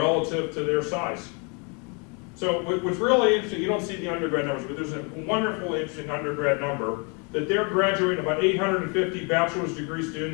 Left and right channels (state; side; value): quieter; right; 33.8 dB